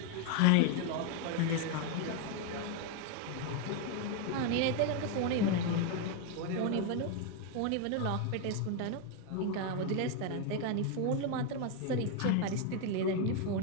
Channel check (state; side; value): different; both; correlation 0.01